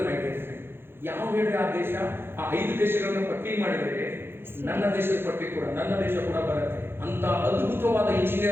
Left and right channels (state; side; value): late; left; 0.11 ms